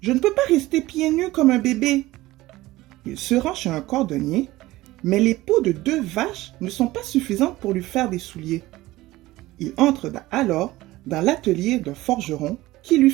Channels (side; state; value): left; quieter; 17.9 dB